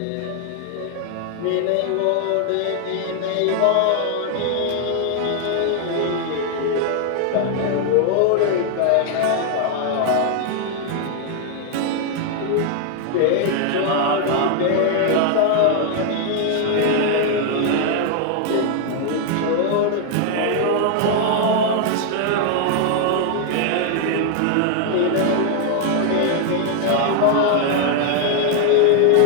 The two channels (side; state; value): both; different; correlation 0.00